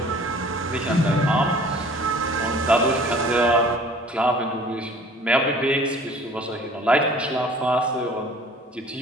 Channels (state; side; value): normal; both; correlation 0.50